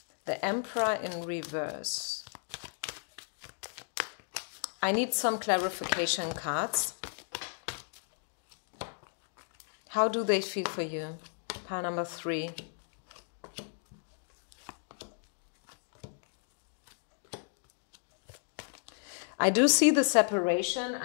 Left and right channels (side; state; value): right; silent; digital silence